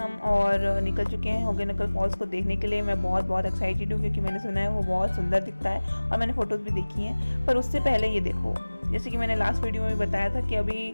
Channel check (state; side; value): inverted; both; correlation -1.00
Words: और निकल चुके हैं होगे नकल फॉल्स को देखने के लिए। मैं बहुत बहुत एक्साइटेड हूँ क्योंकि मैंने सुना है वो बहुत सुंदर दिखता है और मैंने फ़ोटोज़ भी देखी हैं। पर उससे पहले ये देखो, जैसे कि मैंने लास्ट वीडियो में बताया था कि अभी